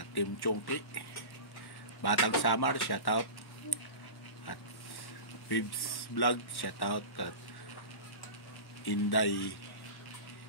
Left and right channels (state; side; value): late; right; 1.1 ms